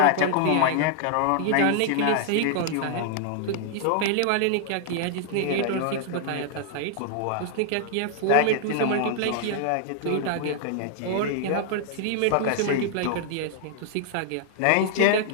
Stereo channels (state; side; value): different; both; correlation 0.00